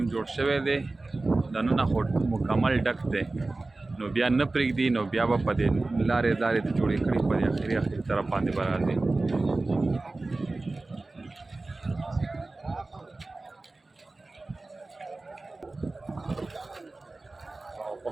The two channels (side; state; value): left; quieter; 3.2 dB